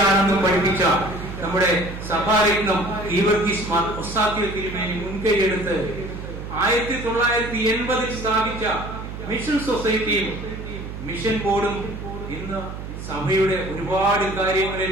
പഠിപ്പിച്ച നമ്മുടെ സഭാരത്നം ഗീവർഗീസ് മാർ ഒസ്താത്യോ തിരുമേനി മുൻകൈയെടുത്ത് 1980 സ്ഥാപിച്ച മിഷൻ സൊസൈറ്റിയും മിഷൻ ബോർഡും ഇന്ന് സഭയുടെ ഒരുപാട്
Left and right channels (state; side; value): noise; right; hum, 9 dB below the sound